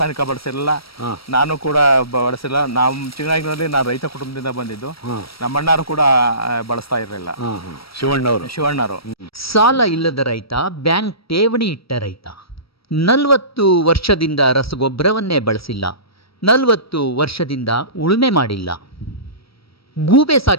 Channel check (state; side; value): late; right; 0.75 ms